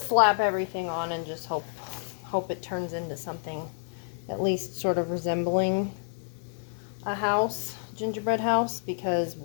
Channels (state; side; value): silent; right; 59 dB below the other